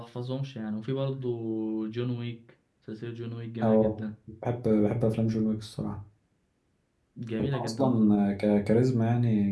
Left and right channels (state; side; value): identical; both; correlation 1.00